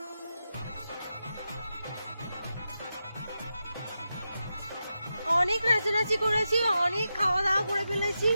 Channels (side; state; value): both; inverted; correlation -0.89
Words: অনেক নাচানাচি করেছি, অনেক খাওয়া দাওয়া করে ফেলেছি।